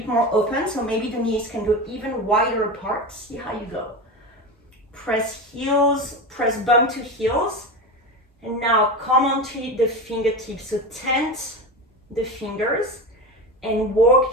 more open, so maybe the knees can go even wider apart. See how you go. Press heels, press bum to heels. And now come onto the fingertips, so tent the fingers and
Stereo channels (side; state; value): both; normal; correlation 0.23